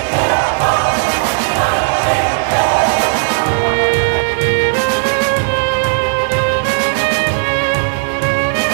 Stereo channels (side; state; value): left; silent; digital silence